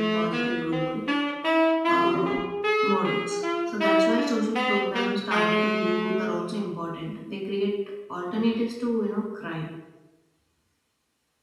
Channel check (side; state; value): both; identical; correlation 1.00